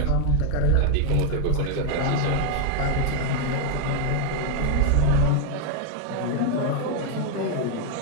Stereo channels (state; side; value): different; both; correlation 0.00